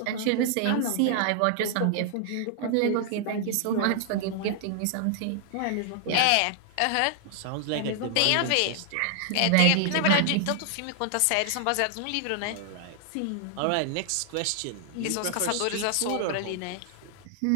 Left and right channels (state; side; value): different; both; correlation 0.00